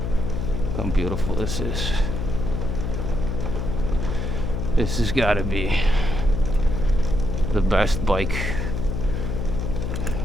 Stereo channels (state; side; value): noise; left; hum, 2 dB below the sound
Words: How beautiful this is. This has got to be the best bike